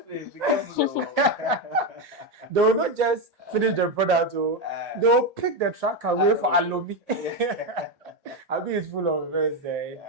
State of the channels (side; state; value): both; normal; correlation 0.09